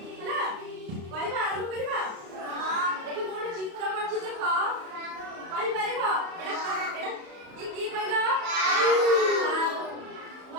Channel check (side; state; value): left; late; 34 ms